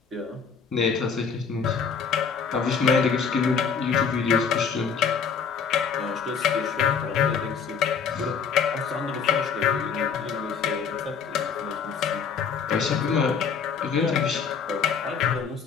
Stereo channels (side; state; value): right; quieter; 6.3 dB